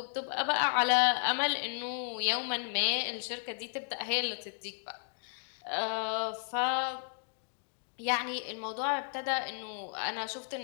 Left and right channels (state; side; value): silent; right; digital silence